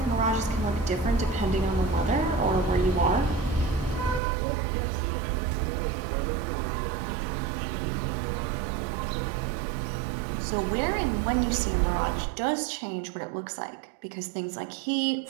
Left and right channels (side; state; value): left; drops out; at 4.2 s